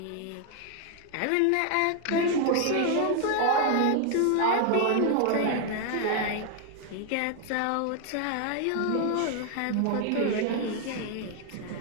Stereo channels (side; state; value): both; different; correlation 0.00